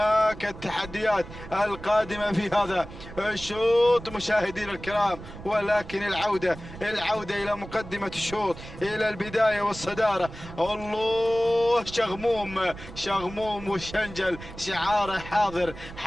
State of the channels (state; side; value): noise; right; rumble, 14 dB below the sound